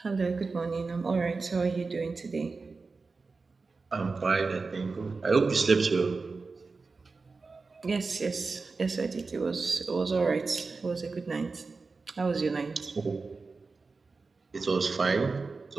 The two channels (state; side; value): quieter; left; 4.1 dB